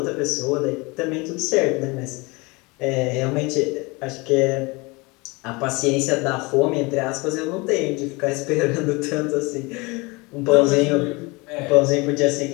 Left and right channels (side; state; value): right; quieter; 26.0 dB